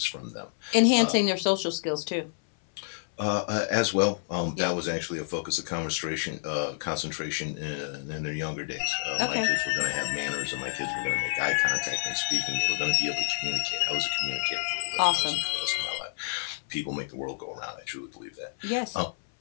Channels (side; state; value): right; silent; 59 dB below the other